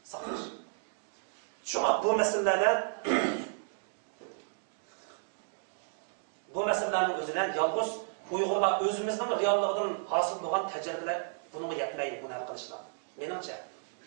Shunga bu masalalar bu meselelerinin özünden yalnız Uygurlar özümüzden realliğinin hasıl olan tecrübeler bunu yapmayı bunu arkadaşlar. Menimce.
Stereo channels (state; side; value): silent; left; digital silence